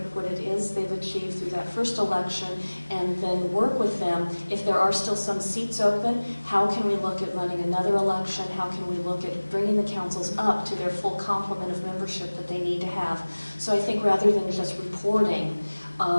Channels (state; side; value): inverted; both; correlation -1.00